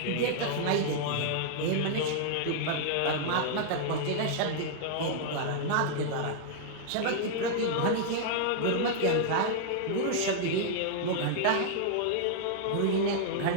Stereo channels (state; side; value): different; both; correlation -0.01